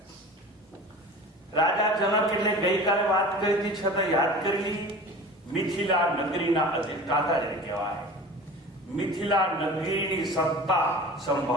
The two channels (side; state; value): both; normal; correlation 0.38